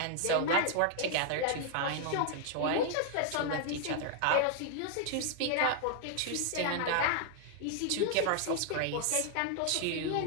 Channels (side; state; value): both; different; correlation 0.00